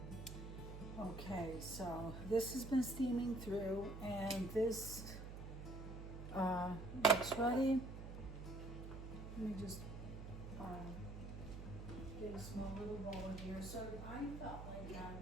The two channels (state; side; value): noise; right; hum, 9 dB below the sound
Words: Okay, so this has been steaming through and this looks ready. Let me just get a small little bowl here. So I felt like